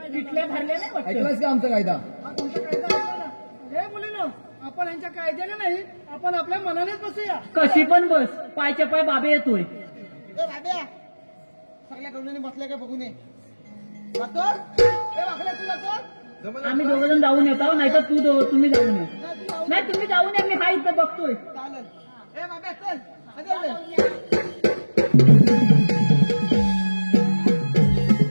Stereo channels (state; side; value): inverted; both; correlation -1.00